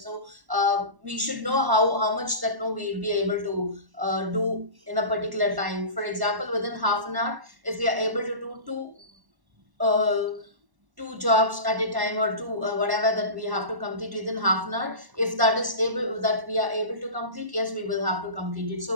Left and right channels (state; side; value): late; left; 1.1 ms